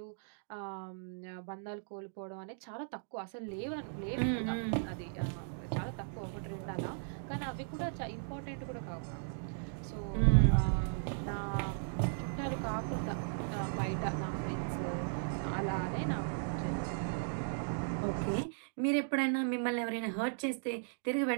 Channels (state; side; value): silent; left; digital silence